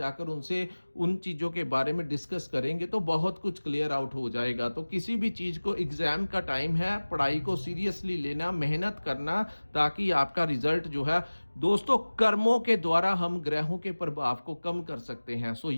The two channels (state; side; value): inverted; both; correlation -1.00